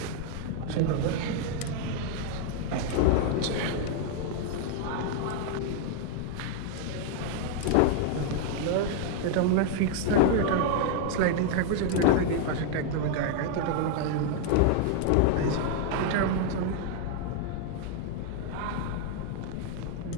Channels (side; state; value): both; different; correlation 0.00